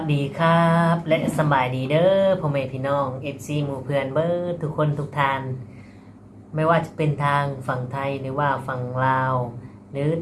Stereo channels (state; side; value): identical; both; correlation 1.00